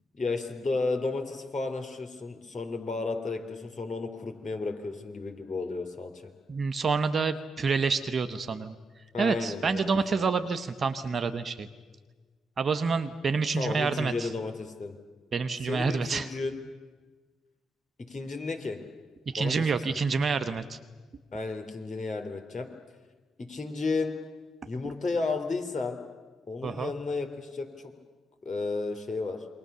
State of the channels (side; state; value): both; normal; correlation 0.83